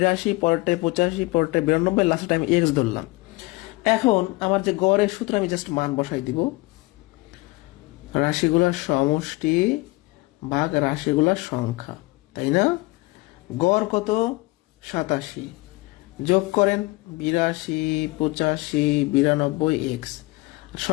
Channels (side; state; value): right; quieter; 22.3 dB